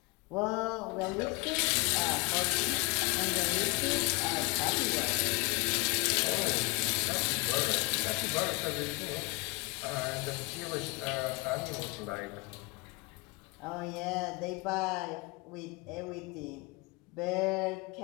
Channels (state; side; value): quieter; right; 27.3 dB